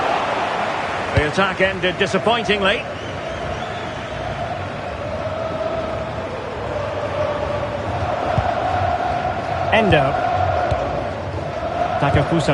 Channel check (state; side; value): identical; both; correlation 1.00